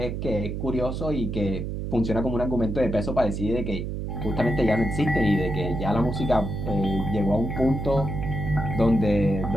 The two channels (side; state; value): right; noise; hum, 4 dB below the sound